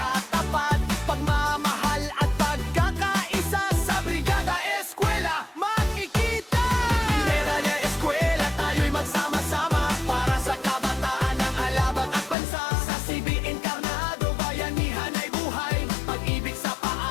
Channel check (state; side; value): drops out; right; at 12.4 s